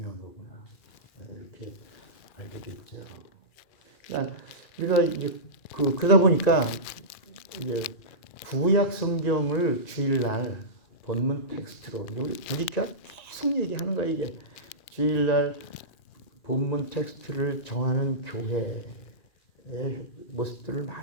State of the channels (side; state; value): right; late; 2.4 ms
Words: 거구나. 이렇게 알게 됐죠. 그러니까 우리가 이제 그러다 보니까 이제 구약 성경을 주일날 본문 텍스트로 우리가 계속 얘기하는 거야. 이게 주일날 본문 텍스트를 정하는 교회의 모습들을